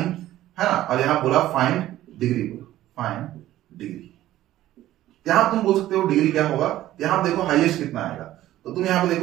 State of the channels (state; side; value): quieter; left; 14.2 dB